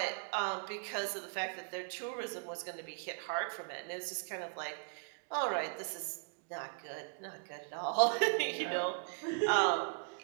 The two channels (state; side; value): quieter; left; 39.5 dB